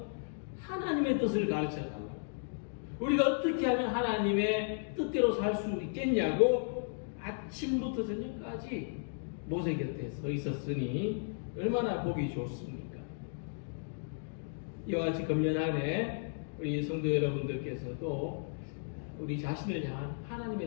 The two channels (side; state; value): right; silent; digital silence